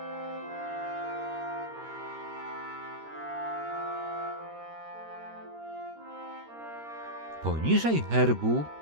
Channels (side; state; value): left; late; 13 ms